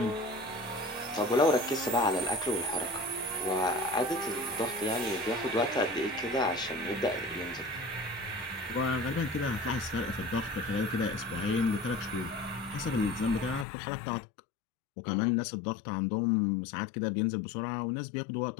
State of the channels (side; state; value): right; drops out; at 13.7 s